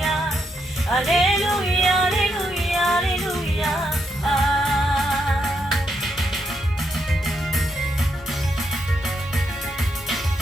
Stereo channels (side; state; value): both; normal; correlation 0.80